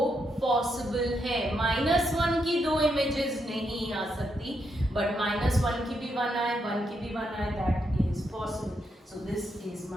पॉसिबल है. -1 की 2 इमेजेस नहीं आ सकती, बट -1 की भी 1 आए, 1 की भी 1 आए, that is possible. So this is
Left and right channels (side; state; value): both; normal; correlation 0.80